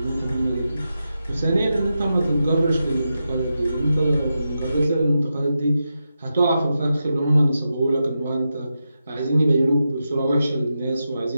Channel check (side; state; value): both; inverted; correlation -0.89